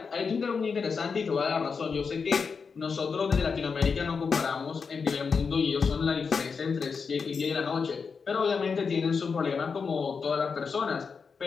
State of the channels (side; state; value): right; quieter; 5.4 dB